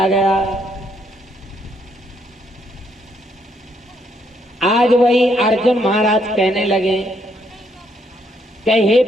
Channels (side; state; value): both; normal; correlation 0.73